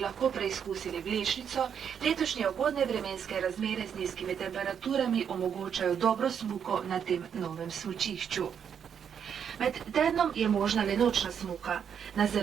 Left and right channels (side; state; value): left; quieter; 7.8 dB